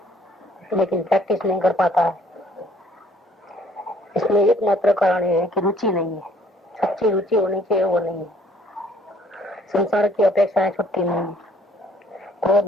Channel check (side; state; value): both; normal; correlation 0.60